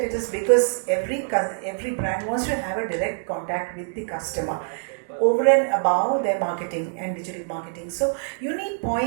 it is because every brand wants to have a direct contact with the customer over and above their marketing and digital marketing. So you need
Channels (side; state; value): left; silent; digital silence